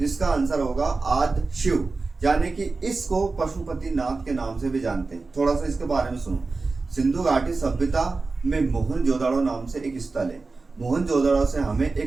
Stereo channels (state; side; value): quieter; left; 3.9 dB